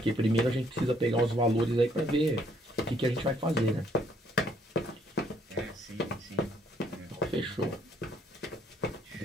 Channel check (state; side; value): normal; both; correlation 0.66